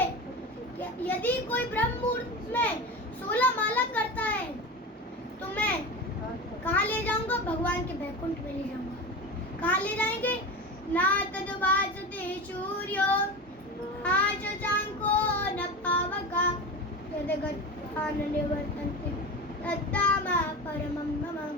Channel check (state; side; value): normal; both; correlation 0.27